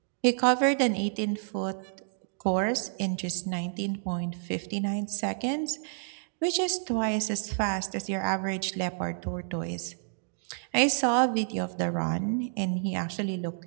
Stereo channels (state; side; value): silent; left; digital silence